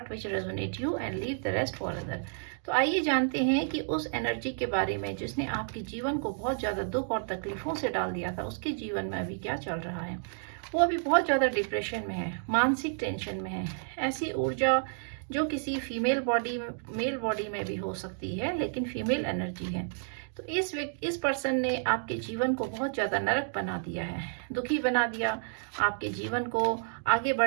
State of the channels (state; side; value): silent; left; digital silence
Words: which resonate you and leave the rest for other. तो आइए जानते हैं कि उस एनर्जी के बारे में जिसने आपके जीवन को बहुत ज़्यादा दुख और तकलीफों से डाल दिया था, उसके जीवन में अभी क्या चल रहा है। वो अभी बहुत ज़्यादा डिप्रेशन में है, मानसिक टेंशन में है। ऐसी ऊर्जा जो किसी फीमेल बॉडी मेल बॉडी में भी हो सकती है, लेकिन फीमेल एनर्जी है। तो इस पर्सन ने आपके जीवन को बहुत ज़्यादा नरक बना दिया है, दुखी बना दिया, आपके जीवन को आगे